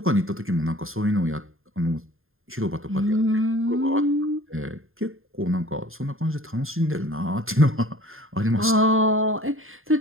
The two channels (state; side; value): late; left; 0.60 ms